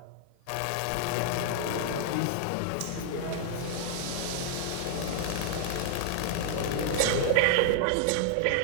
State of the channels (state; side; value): different; both; correlation -0.01